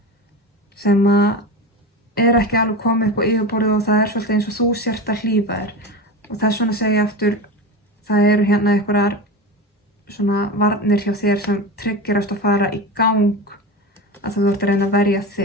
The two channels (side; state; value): both; normal; correlation 0.25